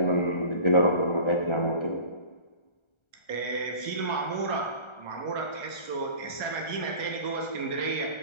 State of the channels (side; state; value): right; late; 1.3 ms